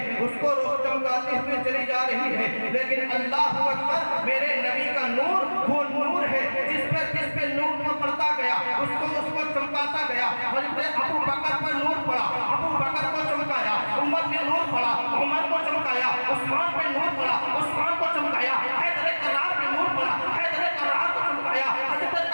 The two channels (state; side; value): inverted; both; correlation -1.00